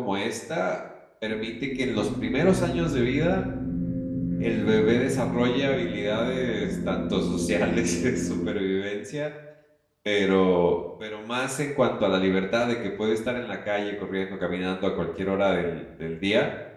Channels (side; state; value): both; identical; correlation 1.00